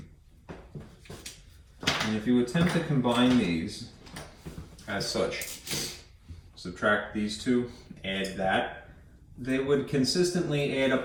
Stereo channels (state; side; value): identical; both; correlation 1.00